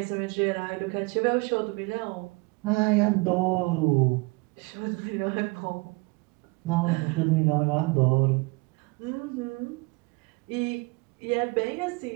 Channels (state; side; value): quieter; left; 26.9 dB